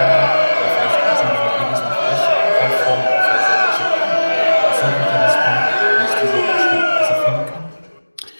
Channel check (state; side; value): inverted; both; correlation -1.00